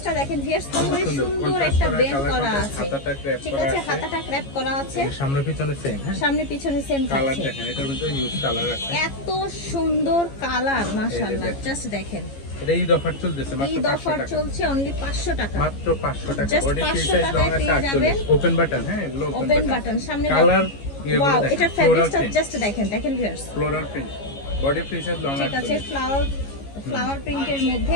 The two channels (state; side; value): late; right; 15 ms